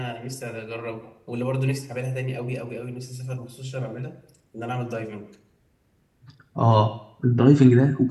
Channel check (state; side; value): identical; both; correlation 1.00